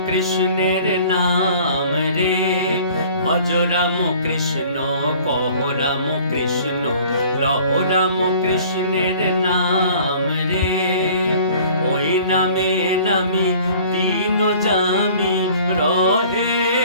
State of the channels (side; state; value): both; inverted; correlation -0.50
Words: কৃষ্ণের নাম রে। ভজ রাম কৃষ্ণ কহ রাম কৃষ্ণ লহ রাম কৃষ্ণের নাম রে। ওই নামে নামি দিন জামি রহে